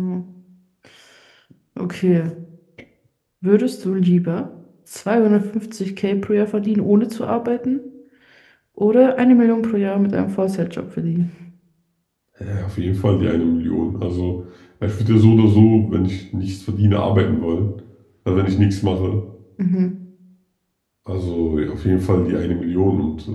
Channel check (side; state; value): both; identical; correlation 1.00